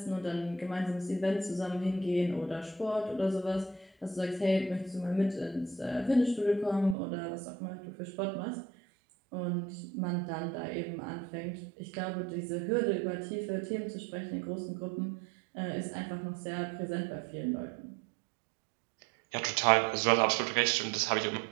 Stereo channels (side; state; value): left; drops out; at 7.0 s